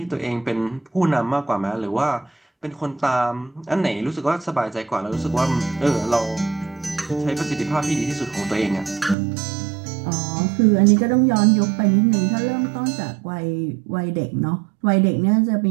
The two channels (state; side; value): drops out; left; at 9.2 s